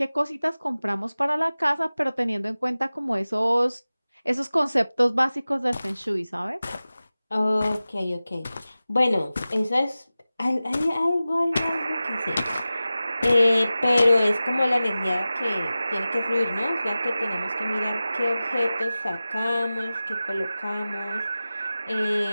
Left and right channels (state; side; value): inverted; both; correlation -0.96